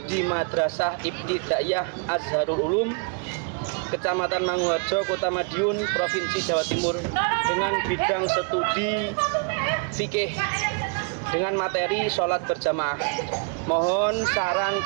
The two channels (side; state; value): left; quieter; 39.0 dB